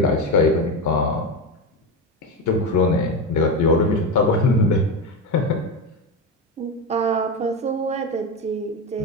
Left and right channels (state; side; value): normal; both; correlation 0.17